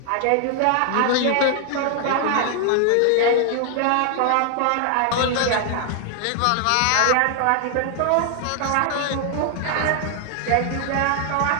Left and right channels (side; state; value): both; different; correlation 0.00